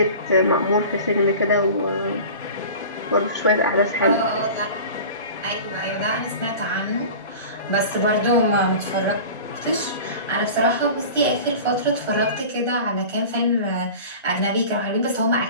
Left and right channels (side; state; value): both; inverted; correlation -0.37